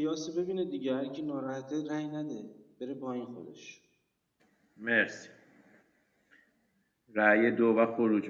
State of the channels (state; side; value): identical; both; correlation 1.00